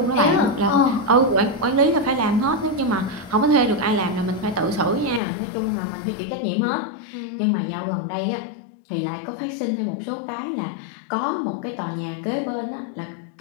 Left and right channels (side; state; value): right; drops out; at 5.2 s